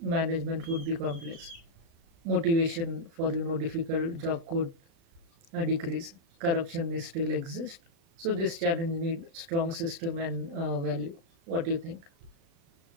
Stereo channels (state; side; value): late; left; 36 ms